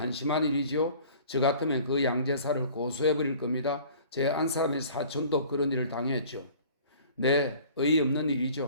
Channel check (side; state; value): both; inverted; correlation -0.48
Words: 일이지요. 저 같으면 그 양제사를 고소해버릴 겁니다. 제 안 사람의 사촌도 그런 일을 당했죠. 네, 어이없는